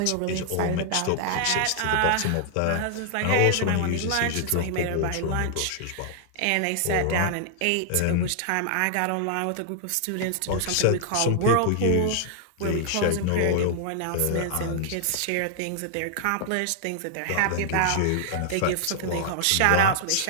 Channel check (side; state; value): both; different; correlation -0.01